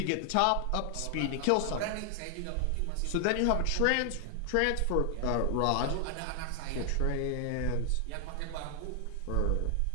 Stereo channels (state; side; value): different; both; correlation 0.00